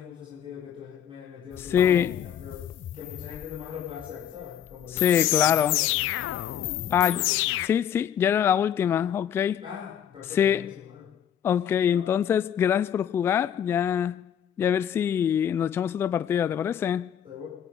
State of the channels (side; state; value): right; quieter; 9.3 dB